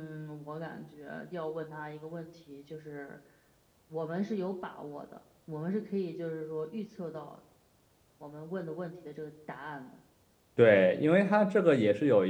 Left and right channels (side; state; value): both; identical; correlation 1.00